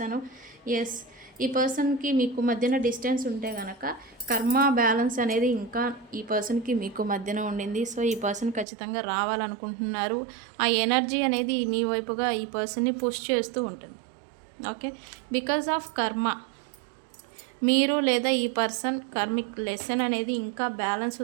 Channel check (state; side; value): drops out; left; at 8.7 s